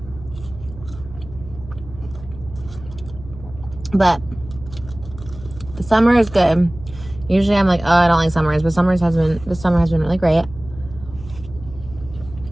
But the summer is good. Usually I'm like, oh, I don't like summers, but this summer has been really great.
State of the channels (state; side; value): noise; right; hum, 16 dB below the sound